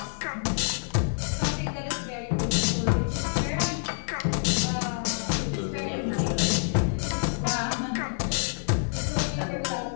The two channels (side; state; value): right; silent; digital silence